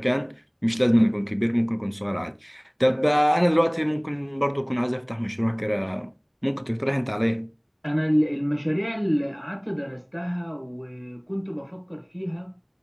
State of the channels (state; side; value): identical; both; correlation 1.00